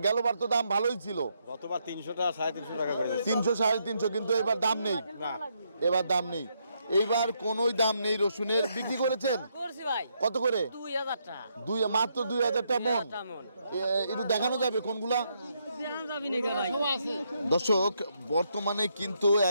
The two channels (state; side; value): inverted; both; correlation -0.77